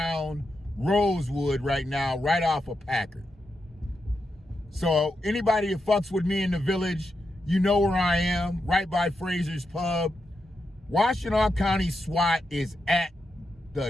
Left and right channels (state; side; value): normal; both; correlation 0.86